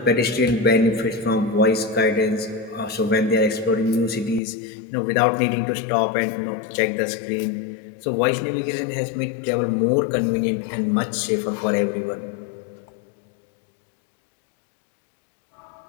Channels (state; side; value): drops out; right; at 4.4 s